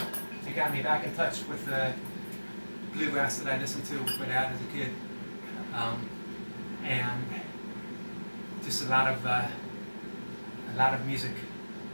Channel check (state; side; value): inverted; both; correlation -1.00